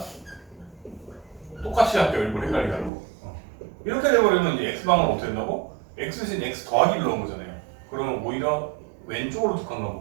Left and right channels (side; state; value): left; drops out; at 2.9 s